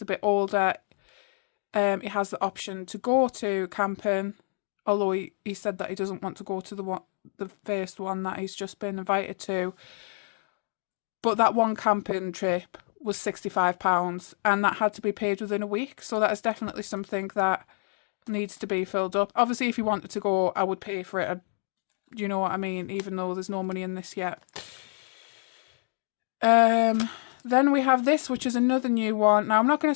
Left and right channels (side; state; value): right; silent; digital silence